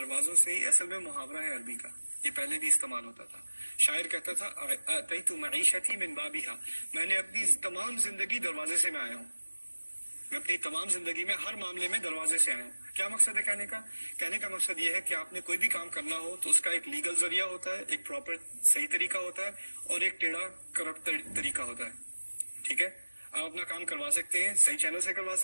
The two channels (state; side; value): inverted; both; correlation -1.00